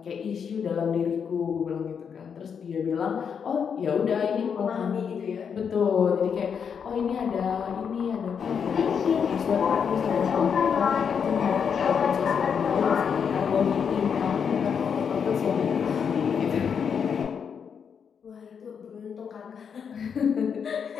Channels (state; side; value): quieter; right; 6.9 dB